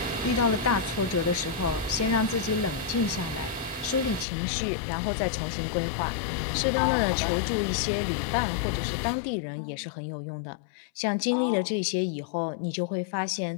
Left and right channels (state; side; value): drops out; right; at 4.2 s